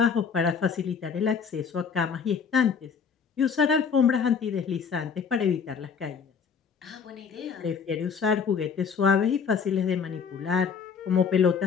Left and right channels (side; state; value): right; quieter; 6.3 dB